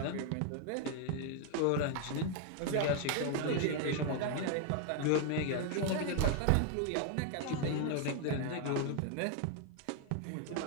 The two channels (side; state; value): both; different; correlation 0.00